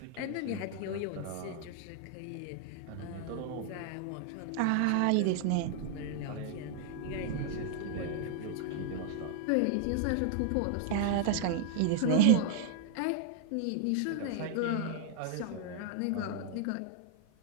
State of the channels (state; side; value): different; both; correlation 0.00